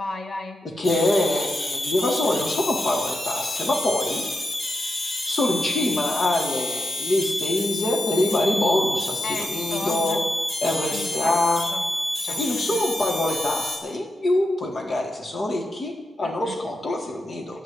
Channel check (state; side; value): normal; both; correlation 0.87